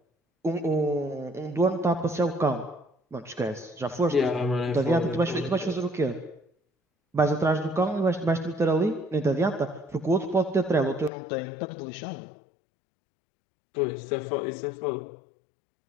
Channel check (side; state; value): right; drops out; at 11.1 s